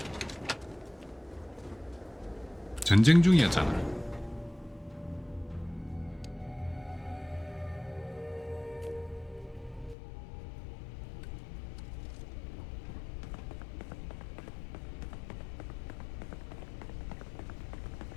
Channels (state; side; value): drops out; right; at 10.0 s